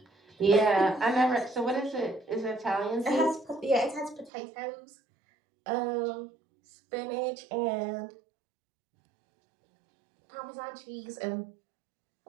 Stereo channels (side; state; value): left; drops out; at 4.3 s